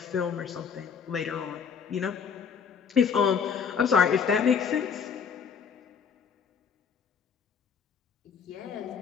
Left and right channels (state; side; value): quieter; right; 6.7 dB